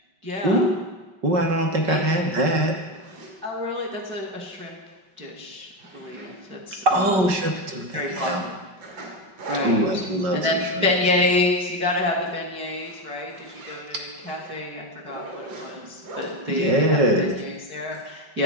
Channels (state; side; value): late; left; 5.2 ms